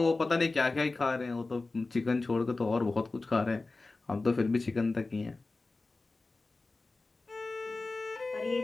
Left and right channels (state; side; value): quieter; right; 3.5 dB